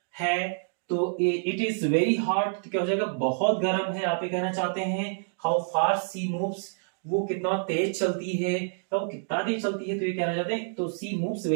है। तो इट इज वेरी हॉट, तो क्या हो जाएगा? बहुत गर्म है, आप ये कहना चाहते हैं। हाउ फास्ट सी मूव्स, वो कितना तेज चलती है, तो वो कितना तेज चलती है, तो ये कहना चाहते हैं। तो सी मूव्स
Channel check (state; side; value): silent; left; digital silence